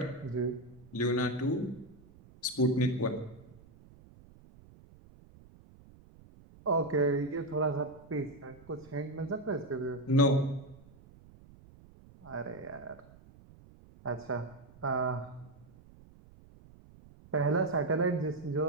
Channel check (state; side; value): noise; right; rumble, 23 dB below the sound